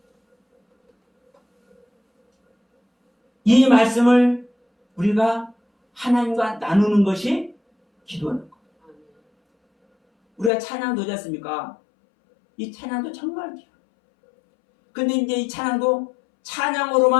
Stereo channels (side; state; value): right; drops out; at 10.5 s